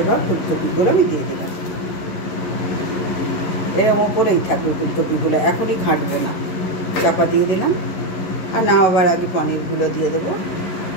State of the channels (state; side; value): late; right; 11 ms